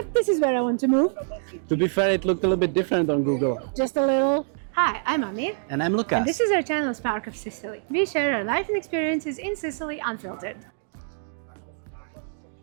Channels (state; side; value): silent; left; digital silence